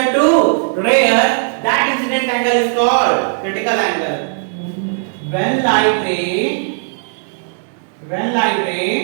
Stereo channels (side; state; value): left; silent; digital silence